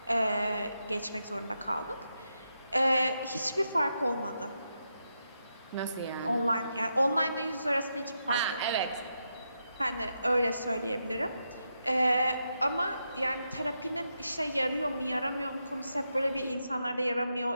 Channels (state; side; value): inverted; both; correlation -0.84